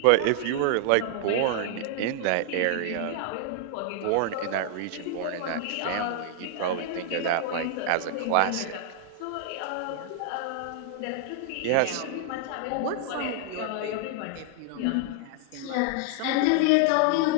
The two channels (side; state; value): both; different; correlation 0.00